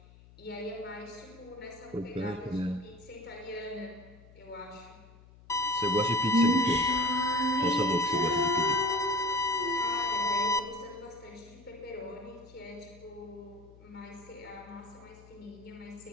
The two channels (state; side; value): noise; left; hum, 23 dB below the sound